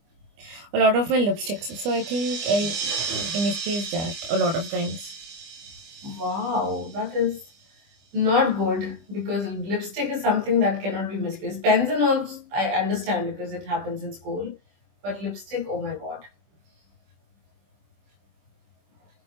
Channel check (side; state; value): left; late; 25 ms